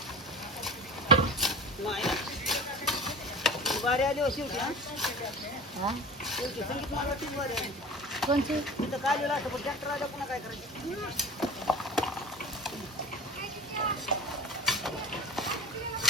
वारी आली हो शेवटी हा शेवटी संगीत मालवाची वारी आली कोणची तिथं काय लिहिलं असं पण ट्रॅक्टर आला पुन्हा काय करायचं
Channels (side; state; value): both; normal; correlation 0.35